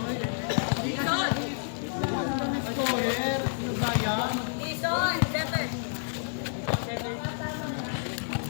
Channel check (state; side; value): silent; right; digital silence